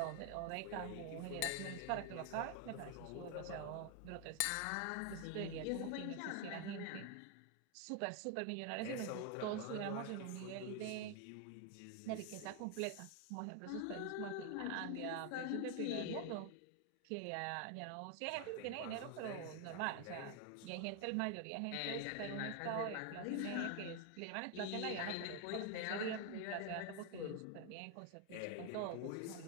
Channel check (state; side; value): different; both; correlation 0.01